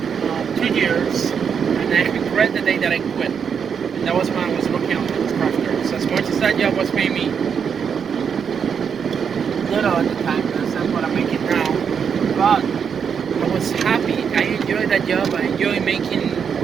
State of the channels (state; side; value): quieter; left; 7.0 dB